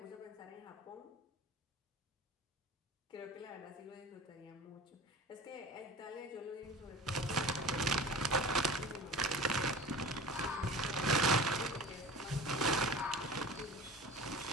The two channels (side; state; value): both; normal; correlation 0.38